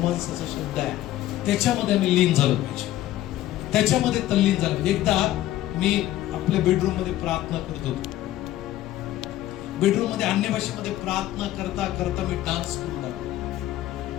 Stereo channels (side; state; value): right; quieter; 14.4 dB